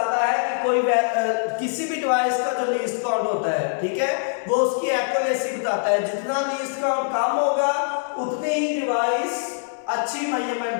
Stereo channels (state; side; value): silent; right; digital silence